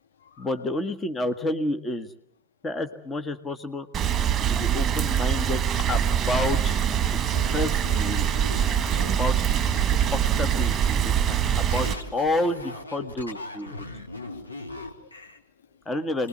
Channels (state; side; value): quieter; left; 4.9 dB